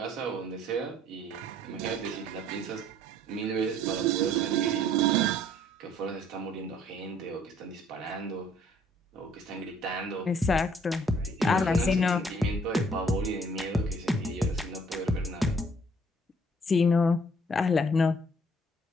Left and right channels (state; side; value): normal; both; correlation 0.60